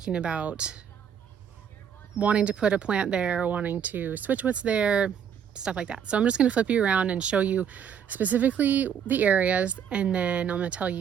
about wanting to put a plant there, wanting to switch what's there, stuff like that. So I'm just going to flip you around and show you specifically the areas, and then I'm going to tell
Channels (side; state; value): left; quieter; 8.1 dB